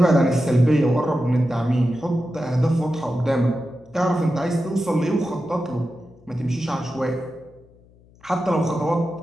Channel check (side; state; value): left; noise; hum, 28 dB below the sound